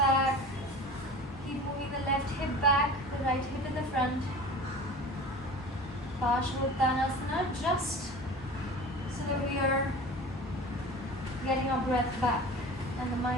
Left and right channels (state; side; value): normal; both; correlation 0.38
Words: Keep moving the left hip back, the right hip in the front. Parshvottanasana, just so that we are getting our breath back and the